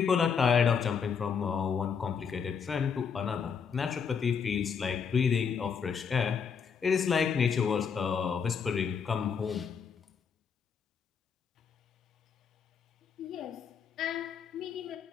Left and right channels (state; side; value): quieter; right; 6.5 dB